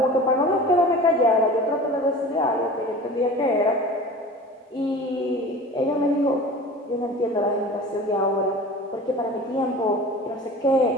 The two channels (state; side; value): normal; both; correlation 0.39